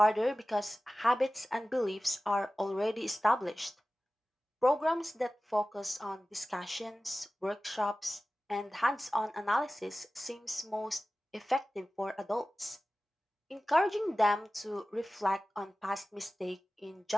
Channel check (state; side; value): normal; both; correlation 0.96